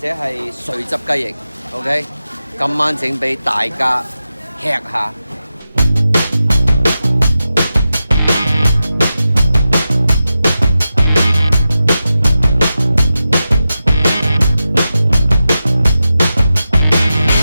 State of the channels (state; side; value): inverted; both; correlation -0.92